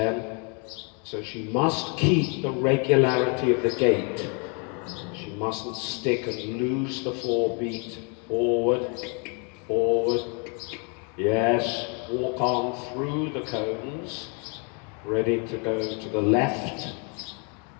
So she must keep the regularity of the gait. She mustn't stick and lose the 4 beat. Forward, forward. Yes, walk on through the cones. Ready to go to the left.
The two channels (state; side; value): quieter; right; 36.0 dB